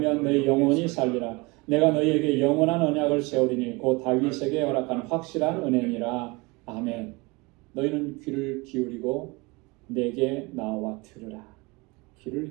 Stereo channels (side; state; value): left; quieter; 25.7 dB